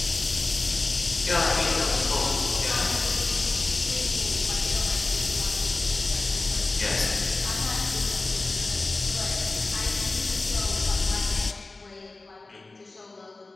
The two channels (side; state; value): right; quieter; 3.3 dB